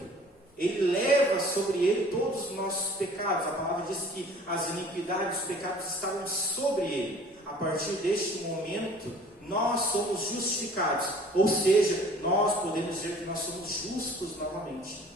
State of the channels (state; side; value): normal; both; correlation 0.50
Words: ele leva sobre ele todos os nossos pecados. A palavra diz que as iniquidades, os pecados estavam sobre ele. A partir deste momento, nós somos justificados, ou seja, nós podemos dizer que nós somos justos novamente,